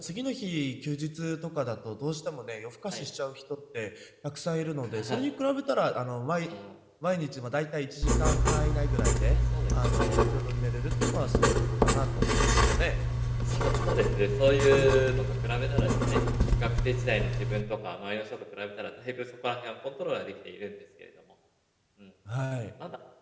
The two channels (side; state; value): both; identical; correlation 1.00